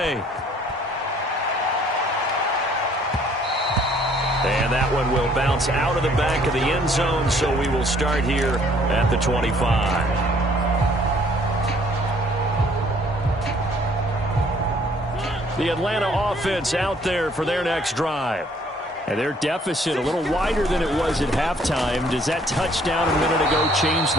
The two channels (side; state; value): both; normal; correlation 0.60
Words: And that one will bounce out of the back of the end zone, so we will start here at the 25. The Atlanta offense out there for their next drive. And their deficit a little wider than it was at halftime. Does that touchdown a minute ago change